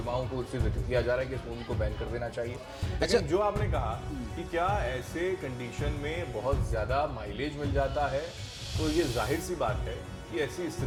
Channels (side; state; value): both; identical; correlation 1.00